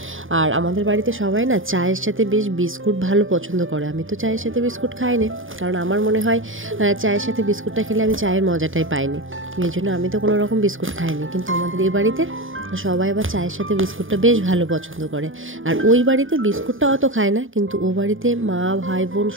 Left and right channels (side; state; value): left; late; 0.58 ms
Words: আর আমাদের বাড়িতে সবাই না চায়ের সাথে বেশ বিস্কুট ভালো পছন্দ করে। আমি তো চায়ের সাথে বিস্কুট খাই না, কারণ আমার মনে হয় চায়ের সাথে বিস্কুটটা খেলে আমি চায়ের মজাটাই পাইনি, এই জন্য আমি তো কোনো রকম বিস্কুট খাইনি। কিন্তু আমাদের এই বাড়িতে সবাই আবার চায়ের সাথে বিস্কুটটা বেশ ভালো পছন্দ করে। আর ওই বাড়িতে বিস্কুটটা অত খায় না, কিন্তু ও বাড়িতে মা ভাই বোন